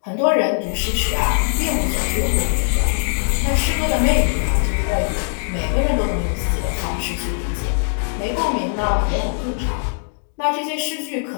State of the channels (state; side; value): silent; right; digital silence